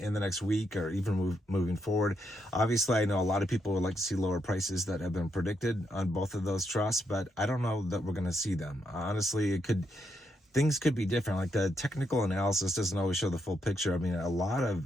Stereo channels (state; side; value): normal; both; correlation 0.79